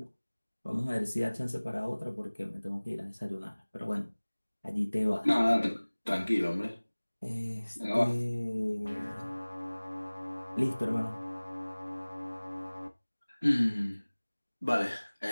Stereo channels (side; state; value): both; inverted; correlation -1.00